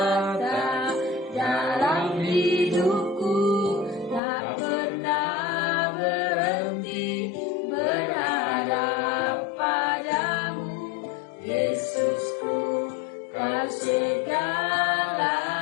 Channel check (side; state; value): right; drops out; at 4.2 s